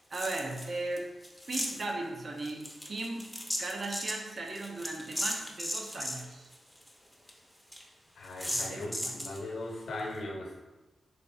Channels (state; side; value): normal; both; correlation 0.91